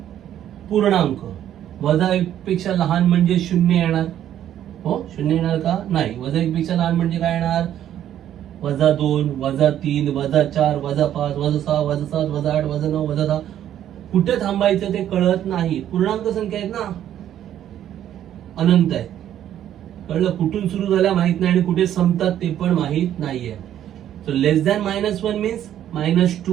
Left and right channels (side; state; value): left; quieter; 11.1 dB